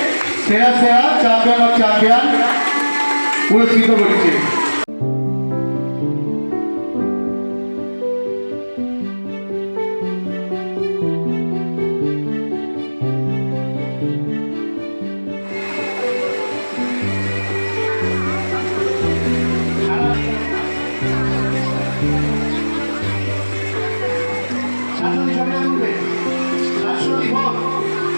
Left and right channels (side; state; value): both; inverted; correlation -1.00